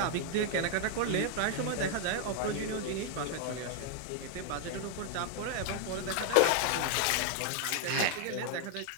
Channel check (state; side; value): different; both; correlation 0.00